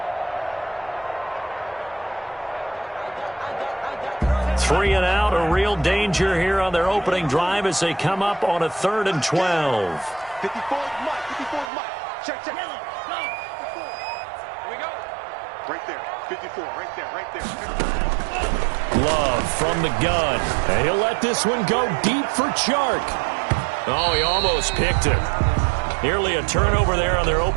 Three and out, a real danger here on their opening drive as they come up on a 3rd and 12. 54 Mike. Check. Here we go. Right there. 54, right there. Love from the gun. And he'll let this one go deep for Chark. Oh, he almost picked it. Nearly a turnover there on their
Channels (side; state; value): left; drops out; at 11.7 s